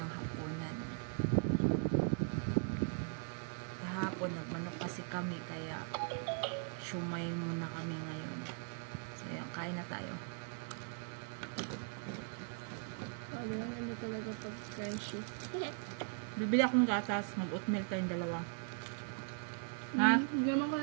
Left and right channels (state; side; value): silent; left; 52 dB below the other